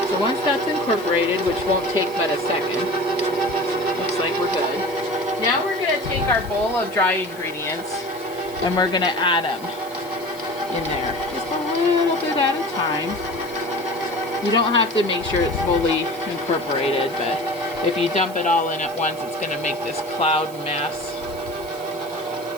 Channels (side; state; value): right; noise; hiss, 19 dB below the sound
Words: So once that's incorporated, which won't take but a second, looks like we're good. Now we're gonna take our bowl of dry ingredients and we're gonna add them in there. Just a little bit at a time. You don't have to make sure it's fully incorporated, but if you dump it all in at once, it's going to make this cloud mess.